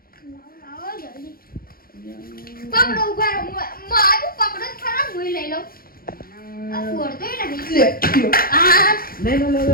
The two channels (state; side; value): late; right; 0.43 ms